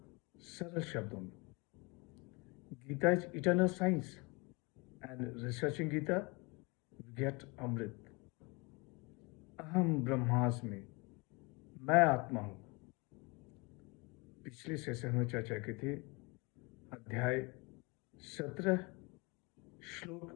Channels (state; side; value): quieter; right; 28.2 dB